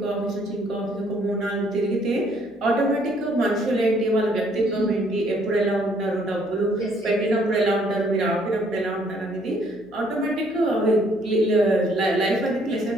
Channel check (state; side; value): noise; left; hum, 28 dB below the sound